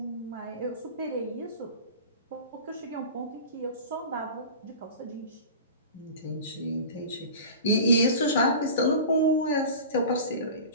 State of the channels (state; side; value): inverted; both; correlation -0.35